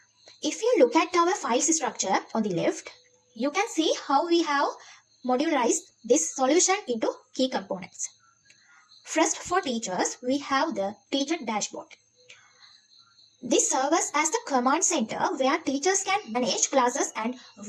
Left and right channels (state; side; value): identical; both; correlation 1.00